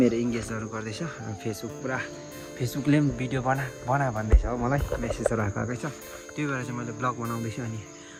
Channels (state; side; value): identical; both; correlation 1.00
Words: इङ्गेजहरू गर्दैछ। फेसबुकले पनि भिडियो बना भन्दैछ हो, मलाई मेसेजहरू आएकै छ। त्यही भएर चाहिँ मैले ब्लग बनाउँदैछु। अनि